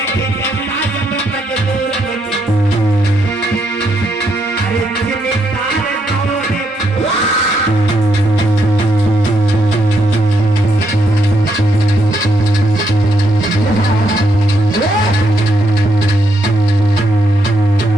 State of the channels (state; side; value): normal; both; correlation 0.77